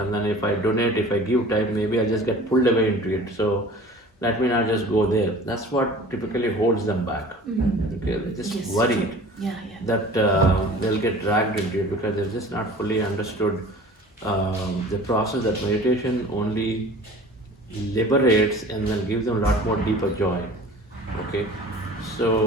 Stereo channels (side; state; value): both; normal; correlation 0.43